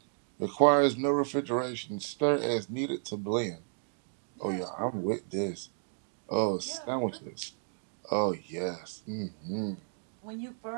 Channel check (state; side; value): silent; left; digital silence